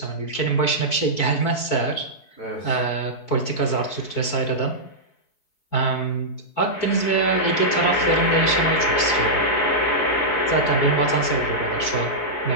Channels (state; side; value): late; right; 4.5 ms